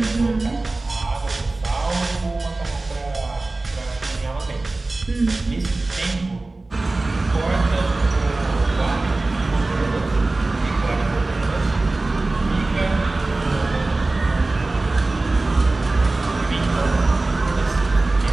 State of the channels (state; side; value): quieter; left; 3.1 dB